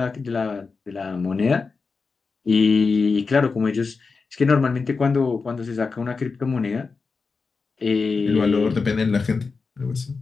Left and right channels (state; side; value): quieter; right; 4.6 dB